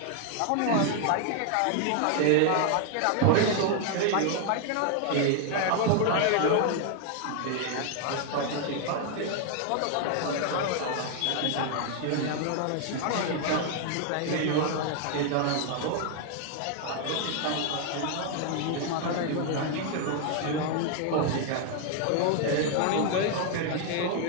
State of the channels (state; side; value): different; both; correlation 0.00